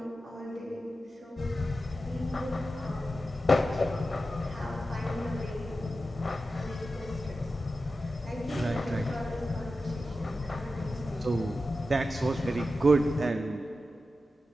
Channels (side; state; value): both; normal; correlation 0.92